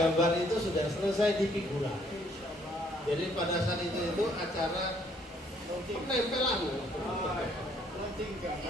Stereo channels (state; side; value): normal; both; correlation 0.65